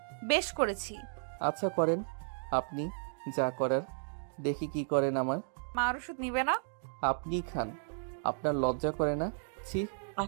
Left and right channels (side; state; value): left; silent; digital silence